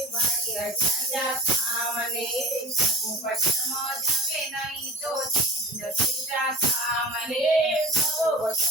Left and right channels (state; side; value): normal; both; correlation 0.38